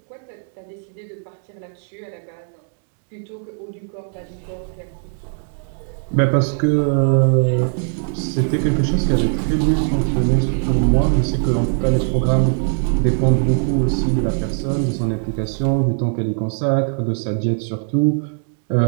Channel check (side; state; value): left; silent; 62 dB below the other